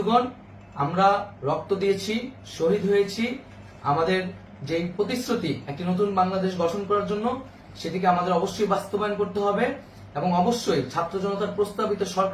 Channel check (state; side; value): identical; both; correlation 1.00